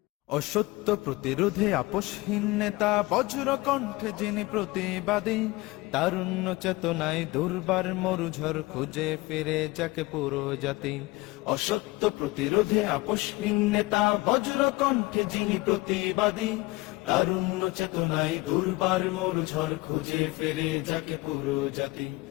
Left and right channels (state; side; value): quieter; right; 21.5 dB